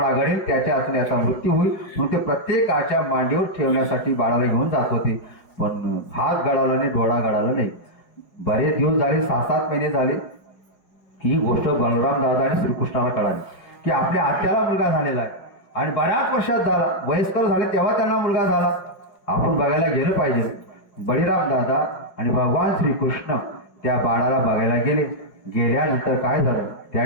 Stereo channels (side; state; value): right; late; 5.2 ms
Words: गळेल, त्याच्या हातून याचा मृत्यू होईल. म्हणून ते प्रत्येकाच्या मांडीवर ठेवण्यासाठी बाळाला घेऊन जात होते. पण हात गळाला नाही, डोळा गळाला नाही. बरेच दिवस झाले, 6-7 महिने झाले. ही गोष्ट बलराम दादा आणि श्रीकृष्णाला कळाली की आपल्या आत्याला मुलगा झालेला आहे आणि बऱ्याच वर्षात झाला, वयस्कर झाले तेव्हा त्यांना मुलगा झाला. आपण बघायला गेलं पाहिजे. बळीराम दादा आणि भगवान श्रीकृष्ण त्या बाळाला बघायला गेले. गेल्यानंतर काय झालं, त्या